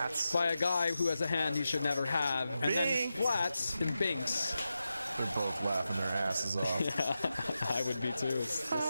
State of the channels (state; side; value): inverted; both; correlation -0.91